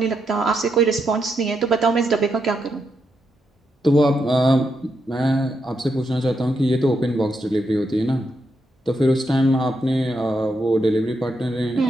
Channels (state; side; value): normal; both; correlation 0.82